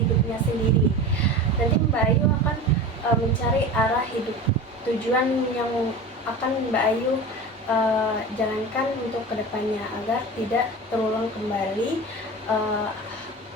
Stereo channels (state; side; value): normal; both; correlation 0.31